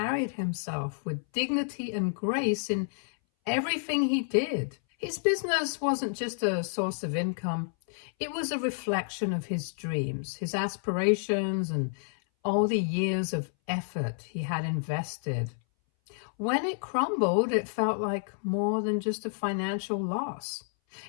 himself with dignity and grace in everything he did. His business wasn't just a source of income. It was a reflection of his dreams, his aspirations, and all the years of effort he had invested. When it crumbled, it felt like more than just a financial loss.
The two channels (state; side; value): silent; right; 58 dB below the other